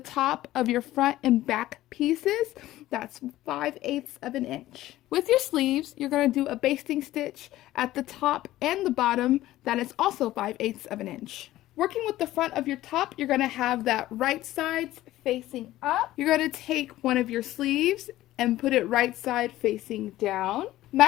of your front and back pieces. That's 5/8 of an inch. With your sleeves, you're going to do a basting stitch at the top and the bottom. That is also 5/8 of an inch. Working with the front of your top, you're going to have that right sides facing up. You're going to take one of your sleeves and put it right side facing down.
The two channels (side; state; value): right; quieter; 15.3 dB